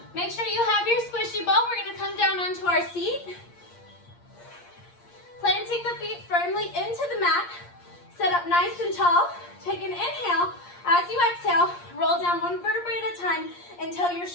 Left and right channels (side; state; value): right; late; 8.6 ms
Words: Make sure you have your squishy ball. We're gonna come down onto our seat. Planting the feet firmly into the mat. Sit up nice and tall. Take an inhale. As you exhale, roll down one vertebrae at a time until your